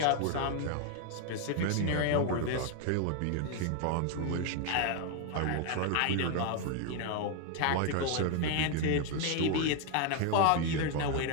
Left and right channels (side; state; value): both; different; correlation 0.01